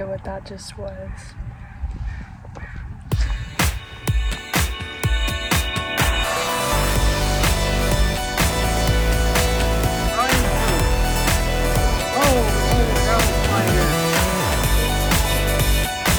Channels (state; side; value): identical; both; correlation 1.00